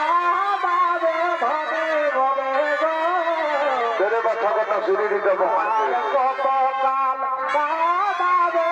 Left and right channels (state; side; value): identical; both; correlation 1.00